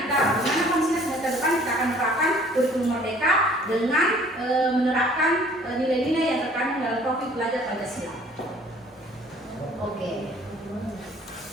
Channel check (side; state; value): both; normal; correlation 0.55